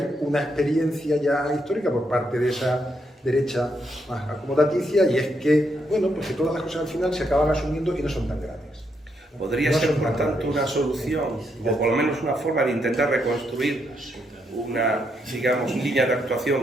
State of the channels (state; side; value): normal; both; correlation 0.78